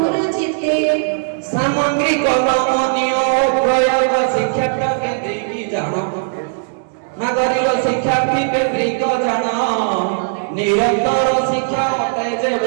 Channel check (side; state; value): left; silent; digital silence